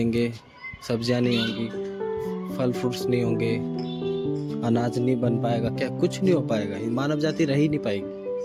सब्जियां नहीं होंगी, फल फ्रूट्स नहीं होंगे, अनाज नहीं बन पाएगा, क्या कुछ नहीं हो पाएगा, मानव जाति रह ही नहीं पाएगी।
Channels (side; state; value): both; identical; correlation 1.00